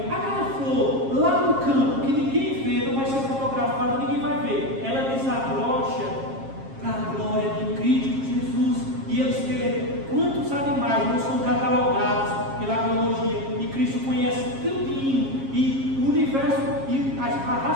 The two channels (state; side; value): late; left; 7.4 ms